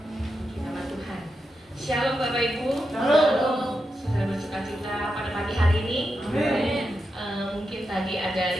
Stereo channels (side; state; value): both; normal; correlation 0.87